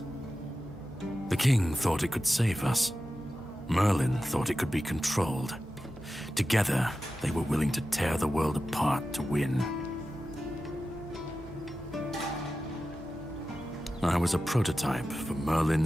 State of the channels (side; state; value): both; normal; correlation 0.93